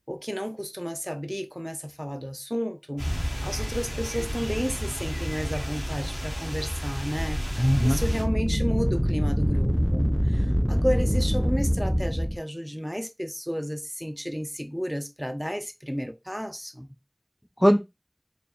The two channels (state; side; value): identical; both; correlation 1.00